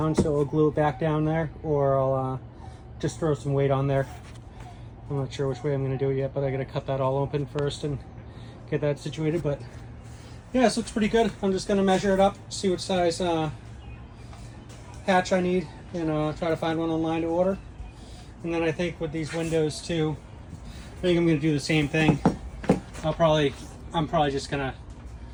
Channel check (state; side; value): identical; both; correlation 1.00